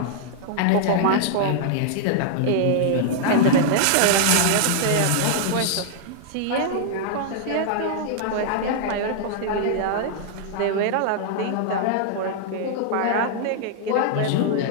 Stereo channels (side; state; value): both; different; correlation -0.01